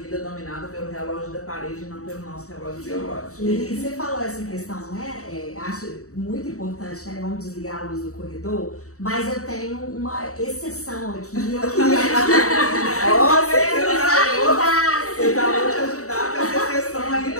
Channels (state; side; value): late; right; 0.65 ms